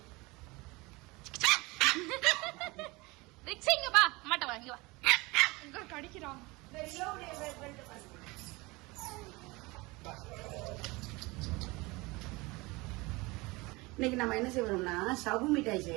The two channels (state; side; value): quieter; left; 23.6 dB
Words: ரிக்ஸிங்க பா மாட்ட வாங்கி வா. இங்க கடிக்குறான். இன்னைக்கு நம்ம என்ன செய்யறோம்னா சவு மிட்டாய்